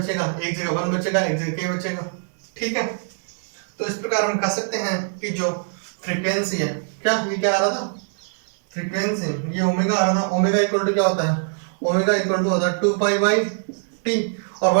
एक जगह 1 बचेगा, एक जगह के बचेगा, ठीक है। तो इस प्रकार हम कह सकते हैं कि जो फ्रीक्वेंसी है, क्या ये क्या आ रहा था, फ्रीक्वेंसी, ये ओमेगा आ रहा था। ओमेगा इक्वल टू क्या होता है, ओमेगा इक्वल टू होता है 2 पाई बाई टी, और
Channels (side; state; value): left; silent; 59 dB below the other